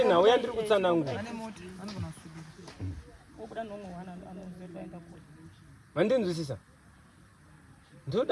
nhau yandiri kutsanangura. Mandinzwisisa?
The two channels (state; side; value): identical; both; correlation 1.00